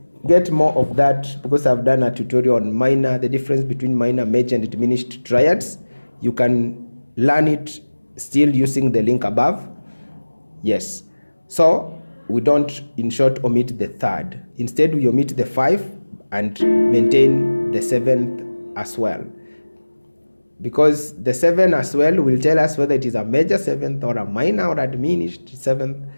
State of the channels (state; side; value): inverted; both; correlation -1.00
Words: get more of that because I've done a tutorial on minor, the difference between minor, major, and diminished triads. You can learn it still using the link above. Yes, so we don't, in short, omit the third. Instead, we omit the 5 and maintain the 7th as well, because the 7 as well will tell us whether it is a major 7th or a minor or a diminished 7th